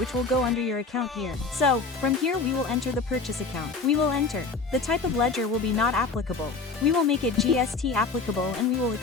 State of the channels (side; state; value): right; quieter; 4.2 dB